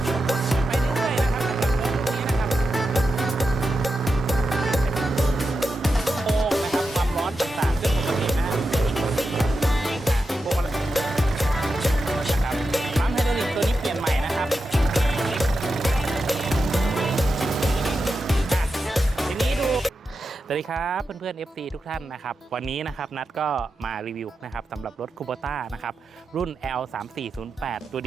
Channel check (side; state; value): both; normal; correlation 0.89